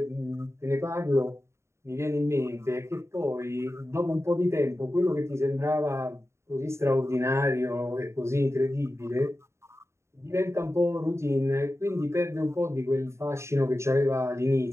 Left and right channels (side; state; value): left; late; 0.13 ms